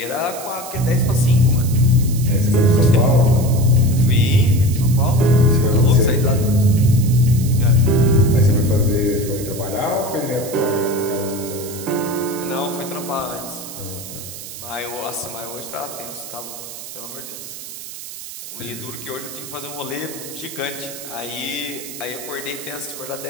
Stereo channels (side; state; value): right; noise; hiss, 12 dB below the sound